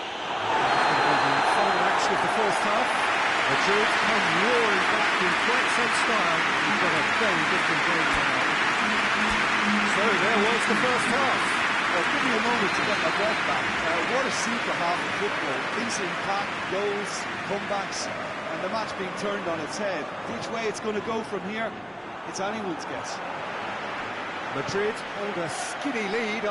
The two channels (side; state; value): both; identical; correlation 1.00